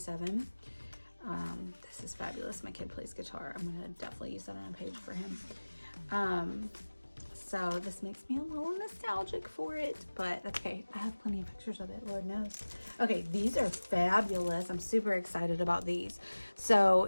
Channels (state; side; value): inverted; both; correlation -1.00